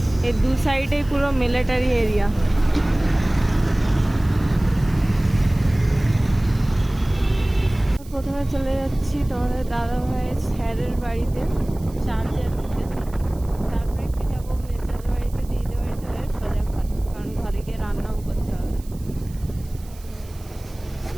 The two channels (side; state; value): right; noise; hiss, 24 dB below the sound